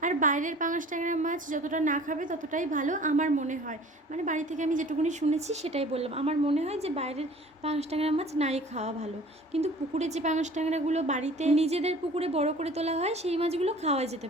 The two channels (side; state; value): both; normal; correlation 0.47